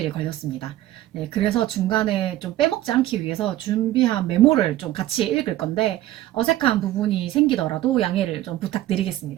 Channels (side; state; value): left; quieter; 14.6 dB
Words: 걸렸습니다. 네, 그래서 중간에 좀 빼먹지 않기 위해서 준비한 메모를 좀 같이 읽을 건데 어색한 부분이 생기더라도 양해를 좀